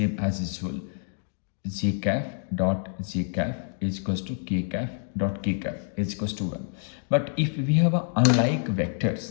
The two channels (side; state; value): right; silent; 60 dB below the other